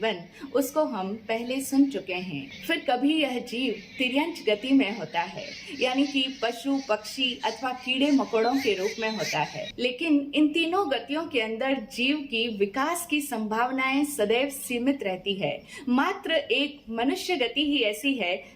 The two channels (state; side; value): identical; both; correlation 1.00